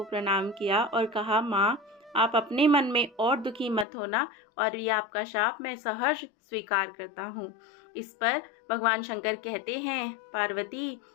प्रणाम किया और कहा, माँ आप अपने मन में और दुखी मत होना और ये आपका शाप मैं सहर्ष स्वीकार करता हूँ। इस पर भगवान शंकर कहते हैं, पार्वती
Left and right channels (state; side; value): drops out; right; at 3.9 s